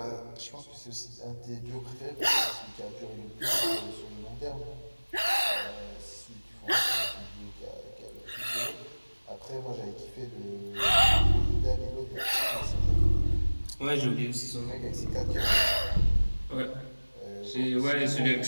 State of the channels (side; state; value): both; inverted; correlation -1.00